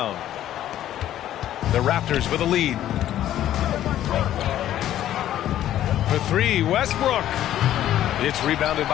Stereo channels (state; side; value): quieter; right; 12.2 dB